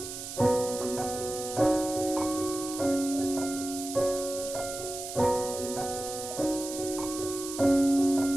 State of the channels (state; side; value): noise; right; hiss, 8 dB below the sound